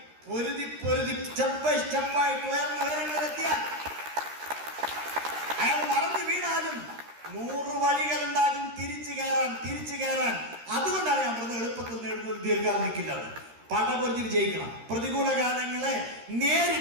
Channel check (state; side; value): late; left; 13 ms